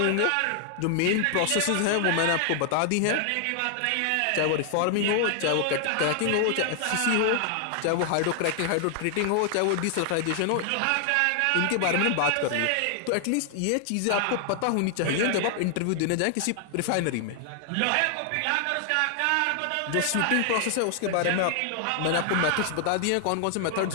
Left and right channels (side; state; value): both; different; correlation 0.00